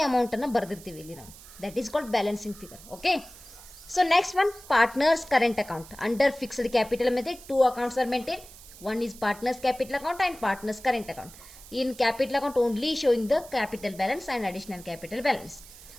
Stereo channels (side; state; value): right; noise; hiss, 19 dB below the sound